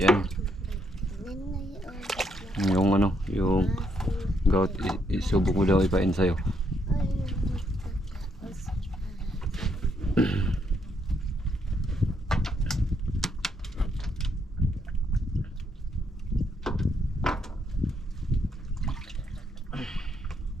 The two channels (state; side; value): normal; both; correlation 0.75